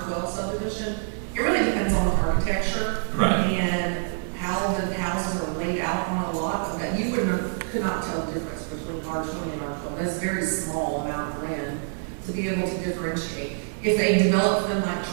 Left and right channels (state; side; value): silent; left; digital silence